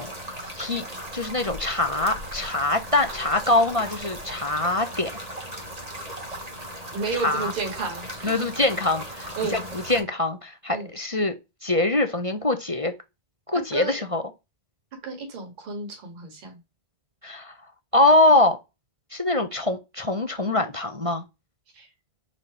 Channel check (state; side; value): late; left; 1.8 ms